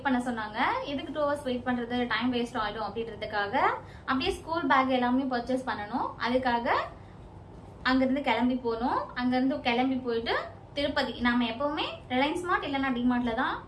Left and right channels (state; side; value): identical; both; correlation 1.00